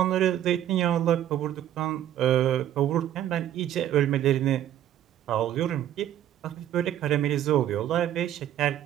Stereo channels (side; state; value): left; quieter; 11.5 dB